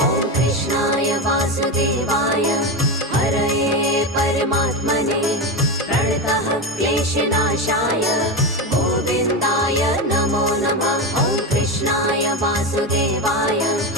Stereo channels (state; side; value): normal; both; correlation 0.17